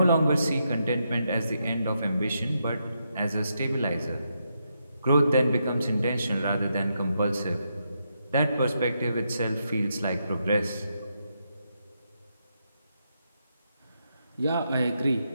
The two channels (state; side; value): inverted; both; correlation -0.81